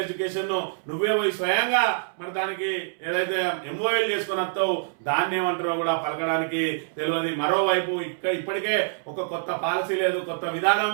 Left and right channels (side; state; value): left; silent; 61 dB below the other